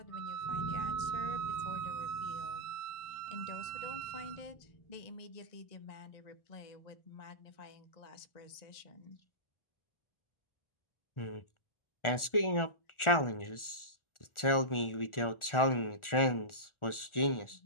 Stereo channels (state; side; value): late; right; 1.4 ms